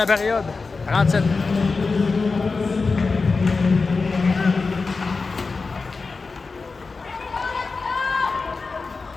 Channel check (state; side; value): quieter; right; 4.2 dB